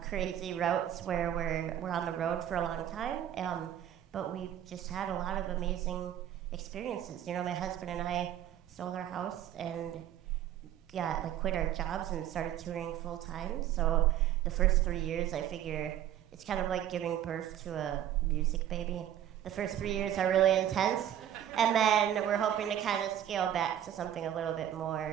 crazy routes where we're on the road for a long time. But we've just had a lot of amazing experiences. You know, my husband and I sold our house and quit our jobs and started touring full time. So the first 3 years, I figure it's kind of like giving birth to a music baby. The first 3 years are really intense, and then we're hoping to kind of scale back to something a little bit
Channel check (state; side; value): quieter; left; 11.0 dB